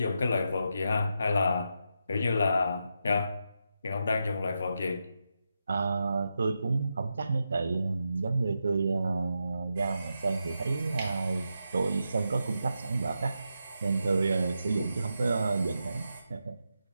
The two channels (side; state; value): both; inverted; correlation -0.86